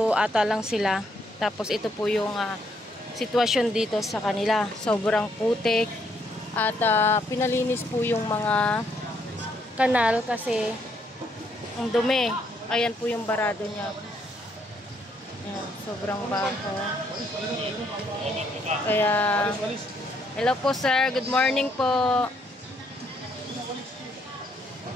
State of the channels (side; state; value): both; normal; correlation 0.72